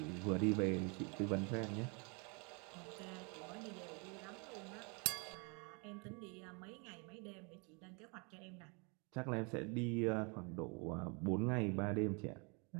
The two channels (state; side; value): quieter; left; 33.0 dB